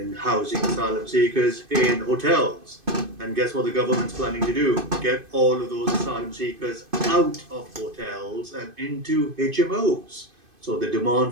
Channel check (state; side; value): late; left; 2.5 ms